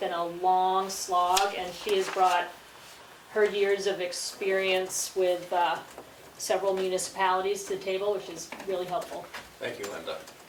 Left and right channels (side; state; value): both; identical; correlation 1.00